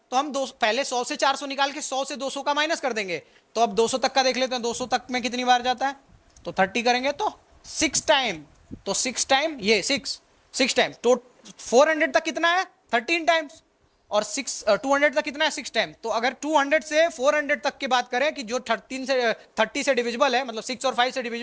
तो हम पहले 100 से 400 निकाल के 100 से 200 का माइनस कर देंगे। तो अब 200 तक का देख लेते हैं, 200 तक में कितनी बार जाता है? तो 30 करेंगे तो 6 टाइम, तो 6 टाइम ये 6 टाइम। तो 400 तक कितना है? 13 टाइम्स। और 200 तक कितना है? 6 टाइम। तो अगर 200 से 400 तक की बात करें कि जो 30 से डिविजिबल है, मतलब 6 और 5 से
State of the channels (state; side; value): identical; both; correlation 1.00